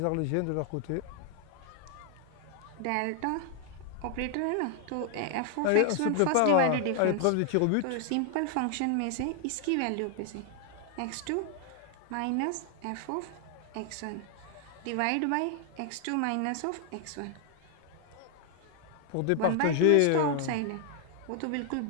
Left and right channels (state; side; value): different; both; correlation 0.00